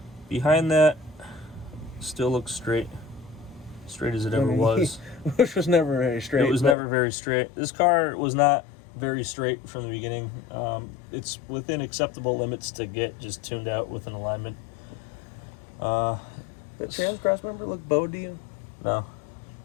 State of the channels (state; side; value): drops out; right; at 6.8 s